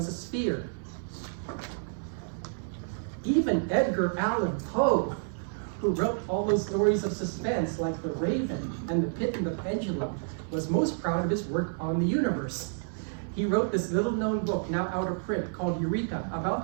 a sphere. Even Edgar Allan Poe, who wrote all those stories of suspense like The Raven and The Pit and the Pendulum, was most proud of his work on the universe. He wrote this little-known book, now out of print, called Eureka,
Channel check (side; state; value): left; silent; digital silence